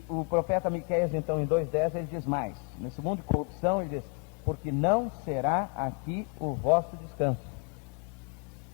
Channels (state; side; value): quieter; right; 35.7 dB